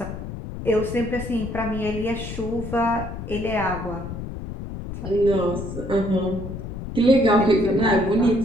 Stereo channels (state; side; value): noise; left; rumble, 8 dB below the sound